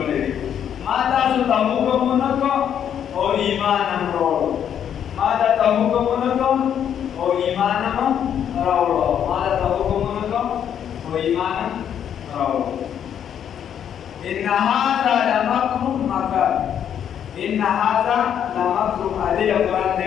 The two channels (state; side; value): quieter; right; 9.1 dB